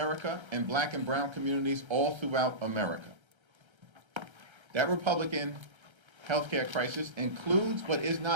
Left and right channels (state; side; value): late; left; 1.3 ms